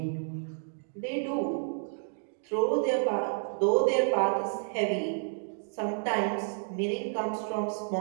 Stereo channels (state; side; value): silent; left; digital silence